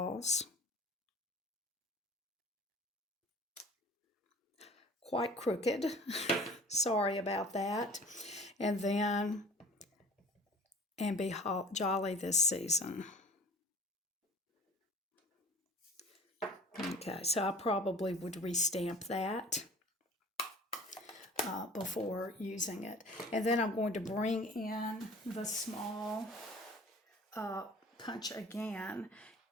Quite crooked. Sorry about that. And then, and be jolly this season. Okay, so I probably would restamp that before using it. And then I'm going to bring in the small punch again.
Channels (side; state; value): both; normal; correlation 0.46